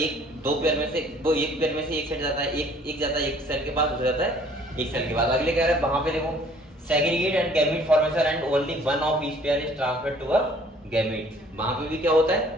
पेयर में से एक सेट जाता है, एक जाता है एक सेल के पास, दूसरा जाता है एक सेल के पास। अगले कह रहा है वहां पे देखो segregate and gamete formation and only one of each pair is transferred to a gamete. वहां पे भी क्या होता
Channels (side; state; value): both; normal; correlation 0.56